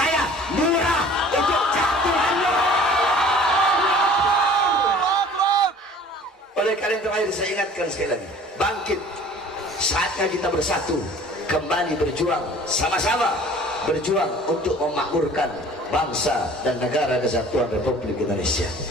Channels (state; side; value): normal; both; correlation 0.48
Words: murah untuk jatuh. Oleh karena itu mari saya ingatkan sekali lagi, bangkit, saatnya kita bersatu, kembali berjuang, sama-sama berjuang untuk memakmurkan bangsa dan negara kesatuan Republik Indonesia.